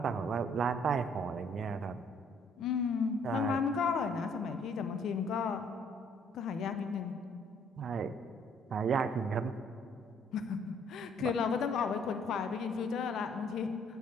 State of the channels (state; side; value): normal; both; correlation 0.62